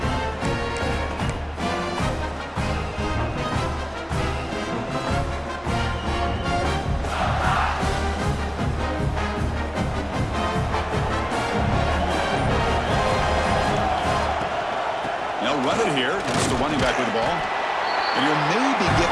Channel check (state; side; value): identical; both; correlation 1.00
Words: Run it here. It's the running back with the ball. And he'll maybe get